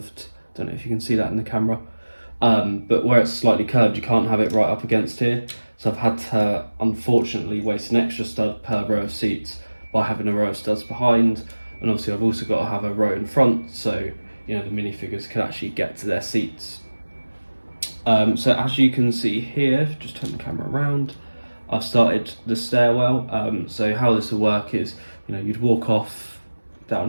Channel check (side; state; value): both; inverted; correlation -1.00